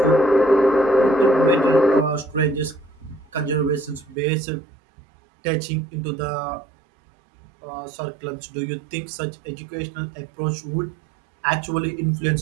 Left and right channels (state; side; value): drops out; left; at 4.2 s